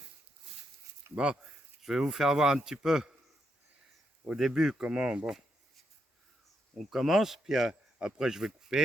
Bon, je vais vous faire voir un petit peu au début comment on commence, puis après je vais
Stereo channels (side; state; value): both; normal; correlation 0.80